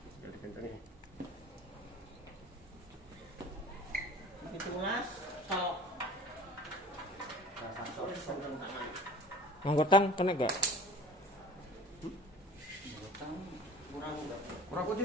Wis dikencengi. 17 sok. Rasa sok. Wis seneng tangan. Anggotang kena gak? Utang Kurang udah. Kurang kunci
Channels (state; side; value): normal; both; correlation 0.43